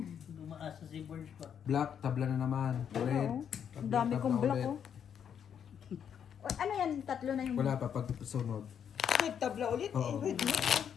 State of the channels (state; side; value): quieter; right; 8.3 dB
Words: Dumaasa si Burge pa. Black, tabla na naman. Red. Oo. Ang dami kong tabla black ulit. oh. O, ano yan? Tatlo na yung... Wala pa pag sunod. Nagtabla ulit Oo. eh. Red na.